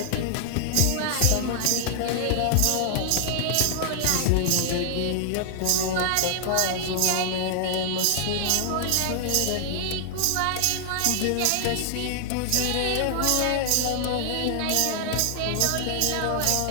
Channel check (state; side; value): different; both; correlation -0.01